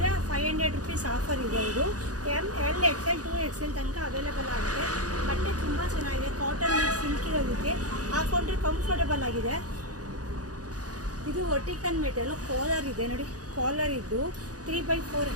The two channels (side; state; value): left; late; 0.68 ms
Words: 500 ರುಪೀಸ್ ಆಫರ್ ಇದೆ. ಇದು L XL 2XL ತನಕ ಅವೈಲೇಬಲ್ ಆಗಿದೆ. ಬಟ್ಟೆ ತುಂಬ ಚೆನ್ನಾಗಿದೆ, ಕಾಟನ್ ಸಿಲ್ಕ್ ಇರೋದಕ್ಕೆ ಹಾಕೊಂಡ್ರೆ ಕಂಫರ್ಟಬಲ್ ಆಗಿದೆ. ಇದು ವರ್ಟಿಕನ್ ಮೆಟೀರಿಯಲ್, ಕಾಲರ್ ಇದೆ. ನೋಡಿ, ಕಾಲರ್ ಇದ್ದು 3x4